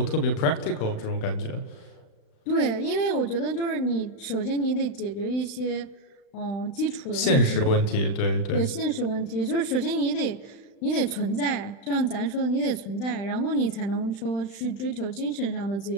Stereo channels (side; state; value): right; late; 35 ms